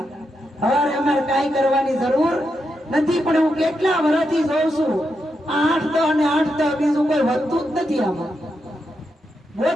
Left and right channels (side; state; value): both; normal; correlation 0.84